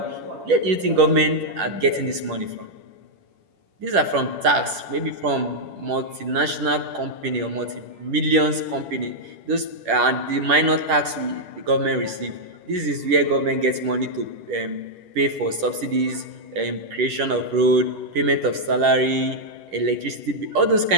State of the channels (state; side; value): late; left; 10 ms